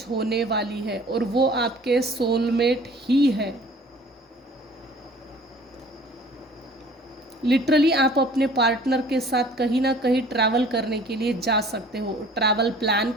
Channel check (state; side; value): normal; both; correlation 0.50